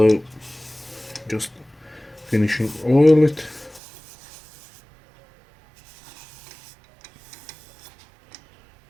just finishing oil it.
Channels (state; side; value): drops out; left; at 3.8 s